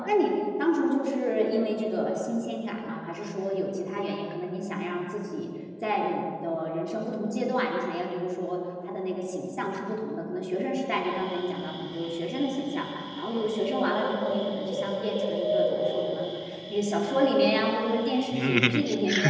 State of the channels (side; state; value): both; identical; correlation 1.00